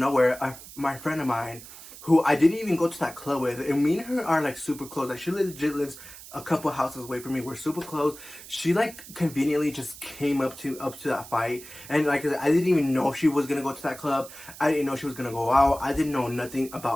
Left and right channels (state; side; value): noise; right; hiss, 16 dB below the sound